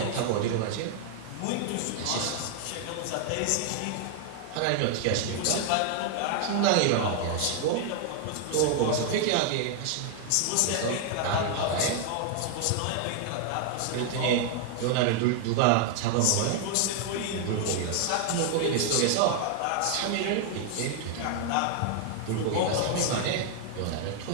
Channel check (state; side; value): different; both; correlation 0.00